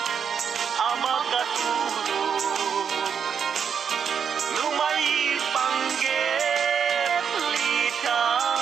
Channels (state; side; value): quieter; left; 7.2 dB